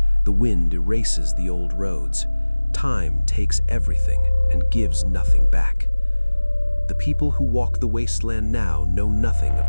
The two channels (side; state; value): both; inverted; correlation -1.00